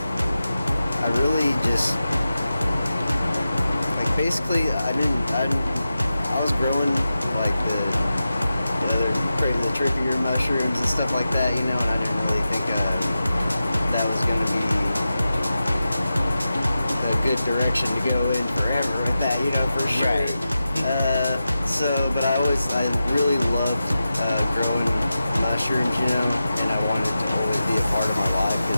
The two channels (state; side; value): inverted; both; correlation -0.92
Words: I really just like basically I was growing like the trickier mushrooms and stuff like that, you know, and I didn't really think that was gonna be a good direction to go in forever with that, you know, for sure. Right. But I really loved growing mushrooms, you know, and I wanted it to always be a part of my life because